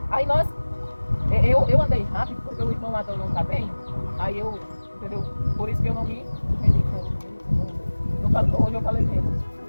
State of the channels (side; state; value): both; inverted; correlation -1.00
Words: Aí eu andei rápido porque o irmão Adão não está bem. Aí eu, entendeu? Por isso que eu não me entendi. Hoje eu falei menos.